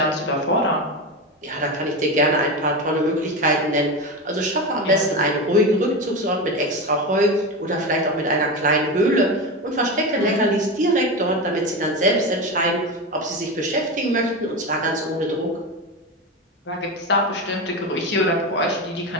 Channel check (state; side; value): normal; both; correlation 0.20